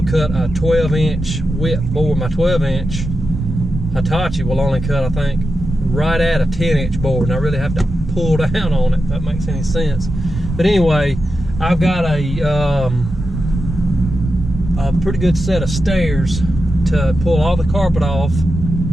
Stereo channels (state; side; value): normal; both; correlation 0.89